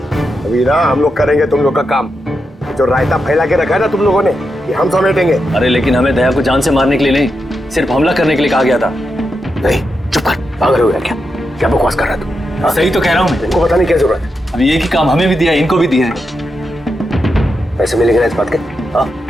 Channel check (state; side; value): normal; both; correlation 0.86